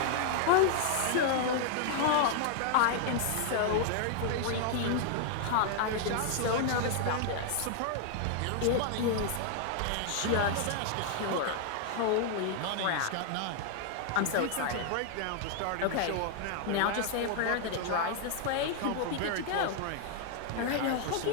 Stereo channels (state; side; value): different; both; correlation 0.00